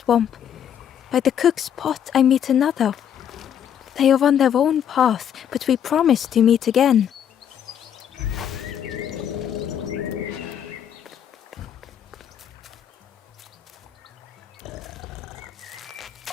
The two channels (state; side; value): quieter; right; 9.1 dB